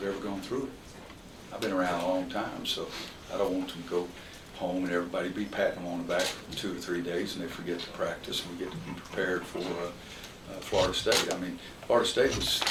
ever gone through it. I've been around a long time, so I don't want them to go home and everybody be patting them on the back for 2 or 3 days and they forget to practice and we get to be prepared for Florida State. I mean, Florida State was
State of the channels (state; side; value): identical; both; correlation 1.00